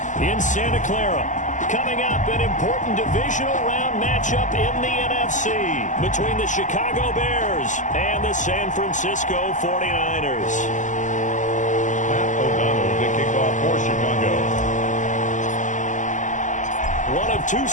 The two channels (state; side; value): late; right; 0.36 ms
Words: in Santa Clara. Coming up, an important divisional round matchup in the NFC between the Chicago Bears and the San Francisco 49ers. The kickoff for Chicago. One of two